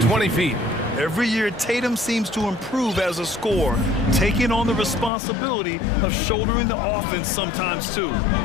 feet. Every year, Tatum seems to improve as a scorer, taking on the responsibility of shouldering the offense sometimes, too.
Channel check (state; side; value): drops out; right; at 5.1 s